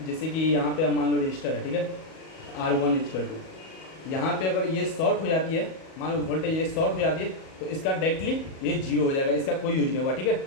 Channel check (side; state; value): right; late; 37 ms